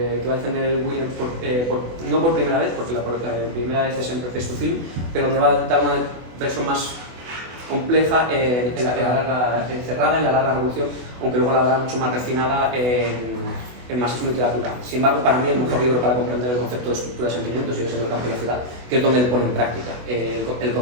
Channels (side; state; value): left; late; 24 ms